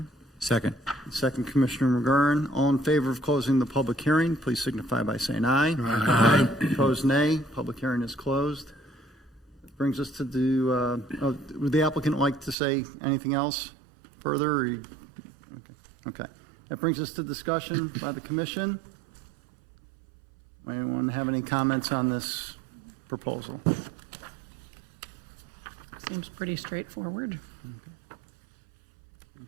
Second. Second, Commissioner McGurran. All in favor of closing the public hearing, please signify by saying aye. Aye. Opposed, nay. Public hearing is closed. Brings us to do, would the applicant like to say anything else further? Or okay. That brings us to discussion by the commission. Anyone have any comments on this proposal? Seems pretty straightforward.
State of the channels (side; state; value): left; drops out; at 12.6 s